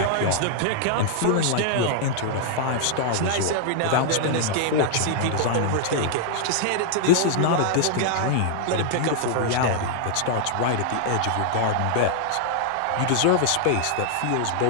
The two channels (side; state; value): both; different; correlation -0.01